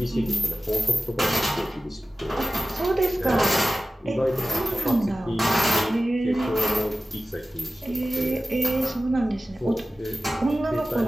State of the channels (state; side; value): normal; both; correlation 0.95